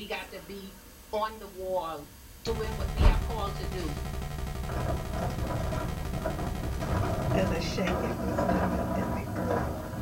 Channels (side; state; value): both; identical; correlation 1.00